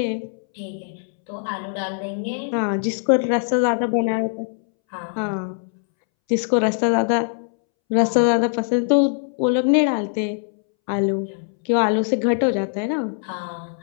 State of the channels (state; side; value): silent; right; 63 dB below the other